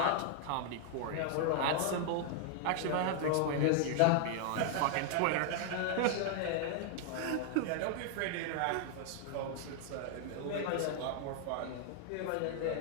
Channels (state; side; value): different; both; correlation -0.01